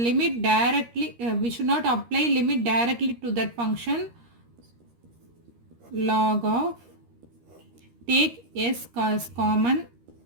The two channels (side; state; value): left; late; 13 ms